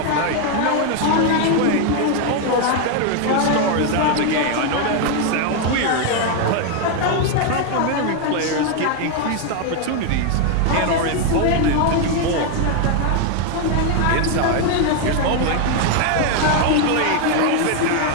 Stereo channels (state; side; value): different; both; correlation 0.01